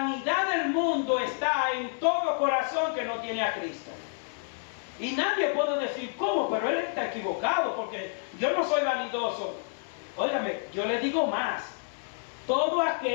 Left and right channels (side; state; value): right; silent; digital silence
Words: del mundo está en todo corazón que no tiene a Cristo. Y nadie puede decir, ¿cómo? Pero él está equivocado porque yo no soy vanidoso. Óigame, yo le digo más. Todo